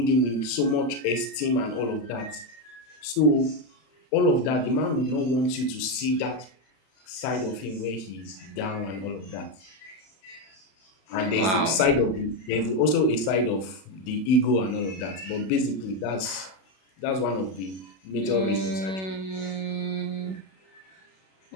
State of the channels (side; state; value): right; late; 32 ms